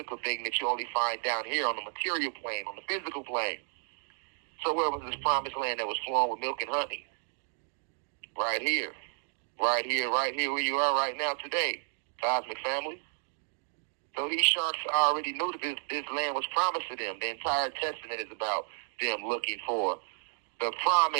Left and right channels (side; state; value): left; silent; 56 dB below the other